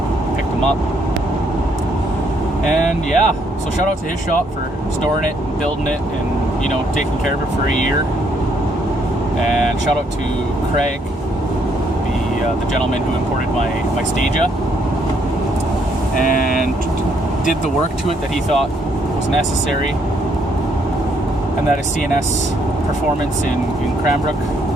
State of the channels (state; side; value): normal; both; correlation 0.70